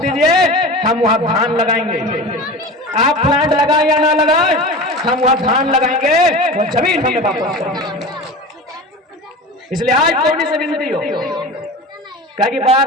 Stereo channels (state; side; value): normal; both; correlation 0.32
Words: दीजिए, हम वहां धान लगाएंगे। आप प्लांट लगाए या ना लगाए, हम वहां धान लगाएंगे, वो जमीन हमें वापस करेंगे। इसलिए आज कोनी से विनती हो कि